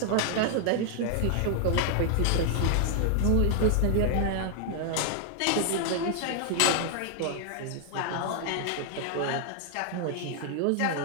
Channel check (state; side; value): different; both; correlation 0.00